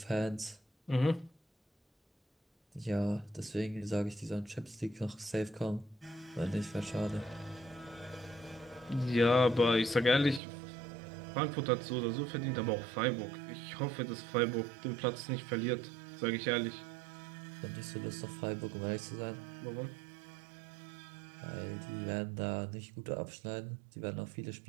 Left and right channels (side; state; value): left; drops out; at 10.4 s